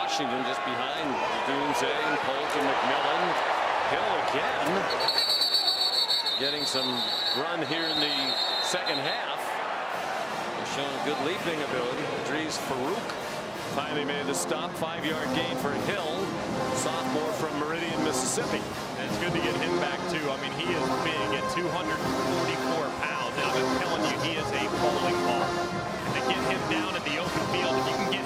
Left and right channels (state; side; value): identical; both; correlation 1.00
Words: just behind Dunze and Polk and McMillan. Hill again, getting some run here in the second half. He's shown a good leaping ability. Idris Farouk finally made the stop. 5-yard gain for Hill, sophomore from Meridian, Mississippi. And it's good to get him back too. I mean, he is big at 244 pounds, and I've been telling you, he is a bowling ball. And to get him down in the open field, if you can get